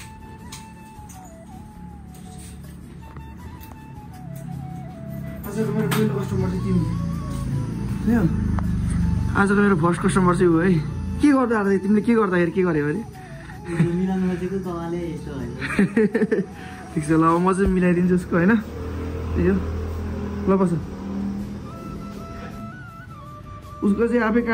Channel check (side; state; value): both; identical; correlation 1.00